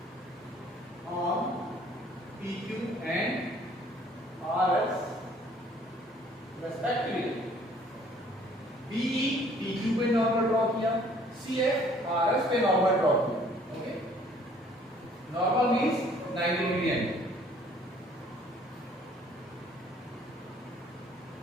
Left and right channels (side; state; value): both; normal; correlation 0.58